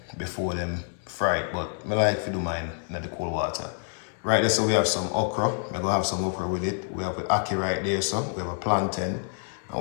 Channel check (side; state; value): right; silent; digital silence